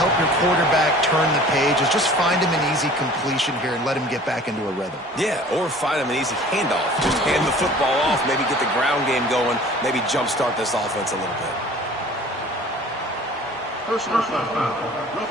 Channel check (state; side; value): normal; both; correlation 0.47